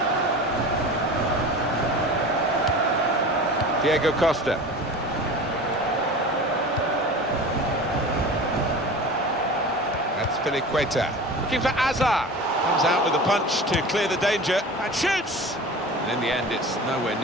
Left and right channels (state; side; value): normal; both; correlation 0.35